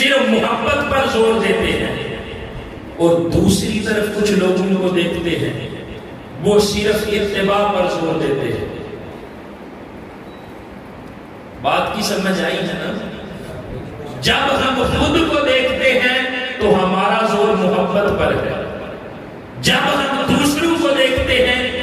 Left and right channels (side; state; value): both; identical; correlation 1.00